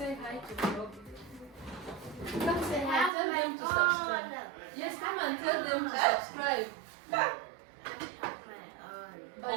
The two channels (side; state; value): left; drops out; at 3.1 s